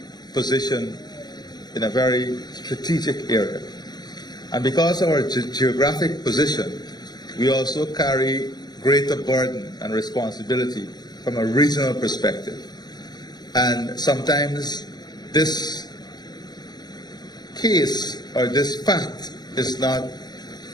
positioned in a very strategic area. And because of our geographic position, we also carry greater burden and responsibility from a regional perspective. And sometimes this case or this fact is not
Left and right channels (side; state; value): right; late; 0.20 ms